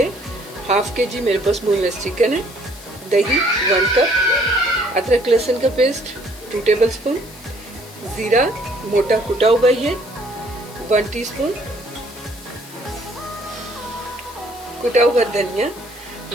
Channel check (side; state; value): left; noise; hiss, 20 dB below the sound